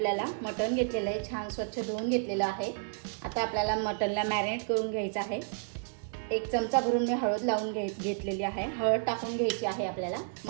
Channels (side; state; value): left; silent; digital silence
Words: मटण घेतलेलं आहे, छान स्वच्छ धुवून घेतलेलं आहे। आता आपल्याला मटणला मॅरिनेट करून घ्यायचं आहे। 1 चमचा भरून मी हळद लावून घेतलेली आहे। हळद टाकून घ्यायची आहे आपल्याला।